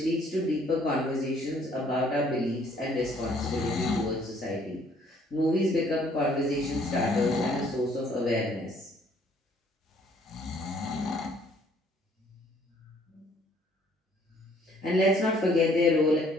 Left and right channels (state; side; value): normal; both; correlation 0.62